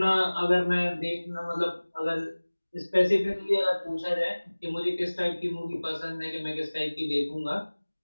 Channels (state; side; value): inverted; both; correlation -1.00